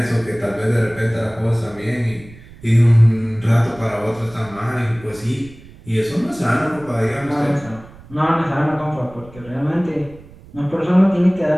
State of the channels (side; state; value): right; noise; rumble, 21 dB below the sound